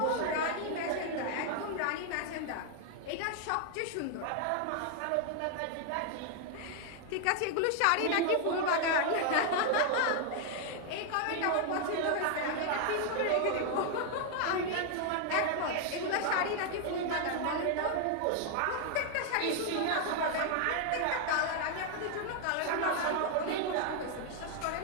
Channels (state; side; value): different; both; correlation 0.00